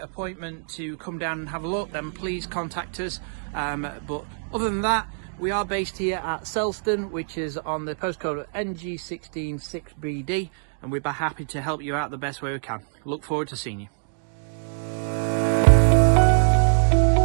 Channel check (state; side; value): silent; left; digital silence